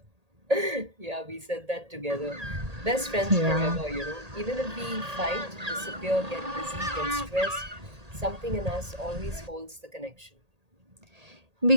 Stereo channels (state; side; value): late; left; 1.8 ms